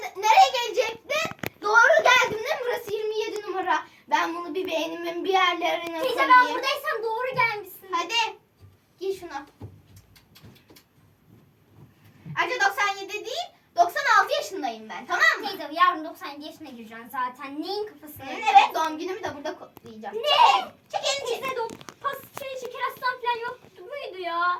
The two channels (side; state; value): both; identical; correlation 1.00